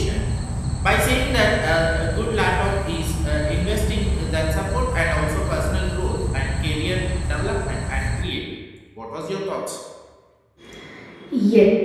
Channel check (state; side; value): identical; both; correlation 1.00